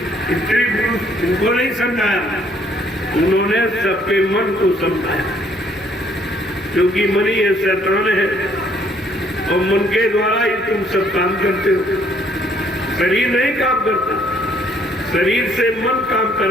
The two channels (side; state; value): both; normal; correlation 0.64